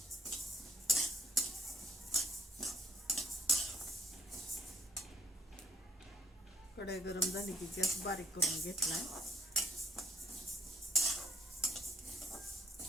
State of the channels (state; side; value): normal; both; correlation 0.66